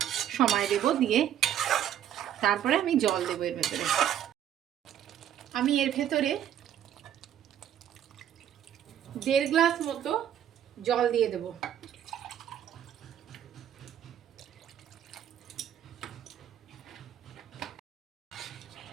সময় দেব, দিয়ে তারপরে আমি জল দেবো এর ভেতরে। আমি এর ভেতরে 1.5 গ্লাস মতো জল দিয়ে দেব।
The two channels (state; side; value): quieter; left; 10.4 dB